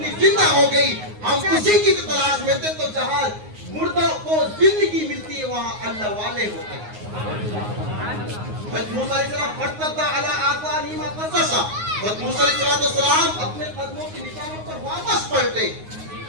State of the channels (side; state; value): left; late; 9.5 ms